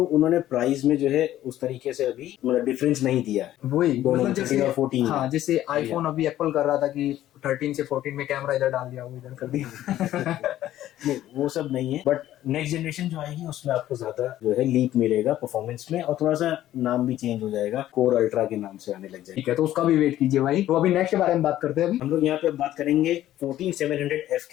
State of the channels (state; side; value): quieter; right; 13.3 dB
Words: उन्होंने प्राइस में जो है उस तरीके से अभी मतलब डिफरेंस नहीं दिया है। वही मतलब जैसे 14 हाँ, जैसे आईफोन अभी एप्पल कर रहा था कि 13 से 14 में कैमरा इधर डाल दिया, वो इधर कर दिया। नहीं, वो सब नहीं है, बट नेक्स्ट जनरेशन जो आएगी उसमें आपको ज्यादा जो है लीप मिलेगा परफॉर्मेंस में, और थोड़ा सा नाम भी चेंज हो जाएगा, कोर अल्ट्रा के नाम से आने लग जाएगा। ठीक है, तो उसका भी वेट कीजिए भाई। तो अभी नेक्स्ट के बारे में बात करते हैं। अभी हम लोग यहाँ पे बात करेंगे 14700F